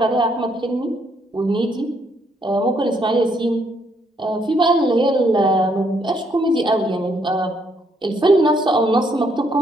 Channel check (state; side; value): normal; both; correlation 0.72